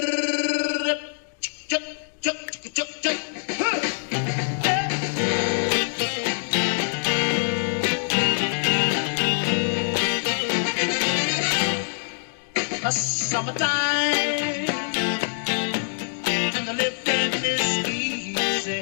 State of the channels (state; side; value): silent; right; digital silence